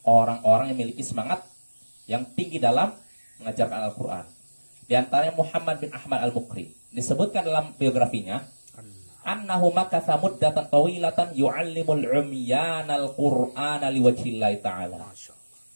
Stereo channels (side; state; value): both; inverted; correlation -1.00